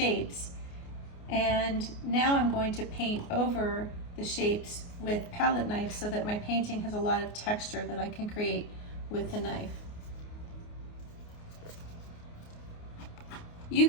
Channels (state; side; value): late; right; 29 ms